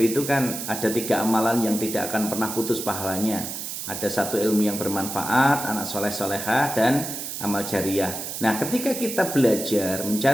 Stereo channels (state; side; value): noise; right; hiss, 6 dB below the sound